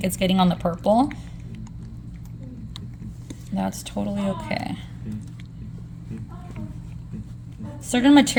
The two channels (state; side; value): identical; both; correlation 1.00